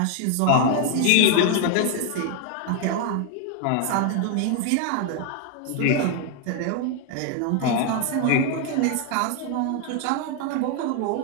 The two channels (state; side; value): different; both; correlation 0.01